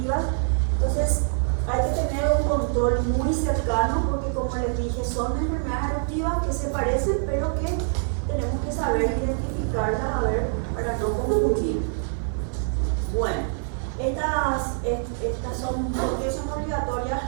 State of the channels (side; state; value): left; silent; 57 dB below the other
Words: Entonces, hay que tener un control muy cercano, porque como les dije, son enfermedades eruptivas que se parecen, pero que tenemos que saber identificarlas, para no confundir. Bueno, estas son, ¿por qué son obligatorias